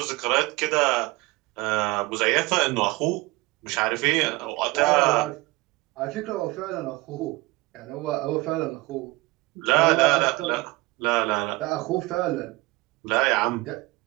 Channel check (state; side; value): quieter; left; 21.7 dB